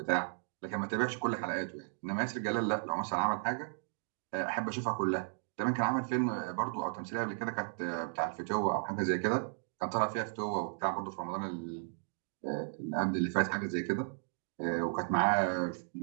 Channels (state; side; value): silent; left; digital silence